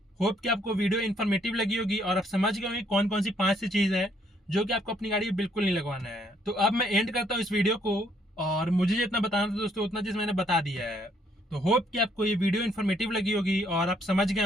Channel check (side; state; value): both; normal; correlation 0.68